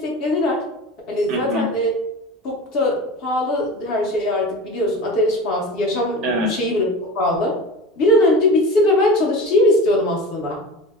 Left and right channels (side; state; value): both; normal; correlation 0.32